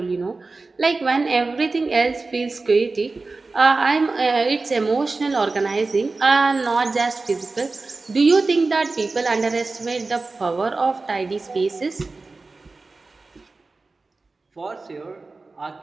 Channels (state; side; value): quieter; left; 3.7 dB